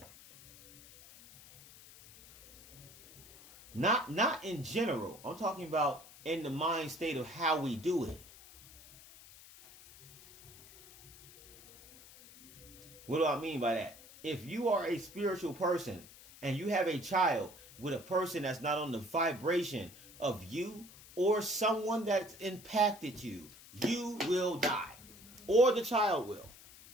Not in general. I'm talking about in the mind state of how we do it. What do I mean by that? If you are a spiritual person and you have a child with a person that's not on the vibration of you or someone that's impacted you, you will die. Or the child will.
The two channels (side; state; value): left; noise; hiss, 20 dB below the sound